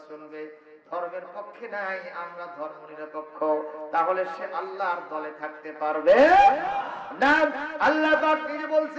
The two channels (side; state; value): both; identical; correlation 1.00